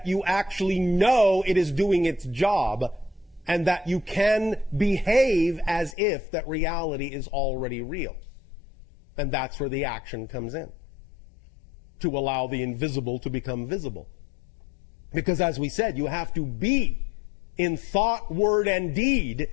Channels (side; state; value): right; drops out; at 6.0 s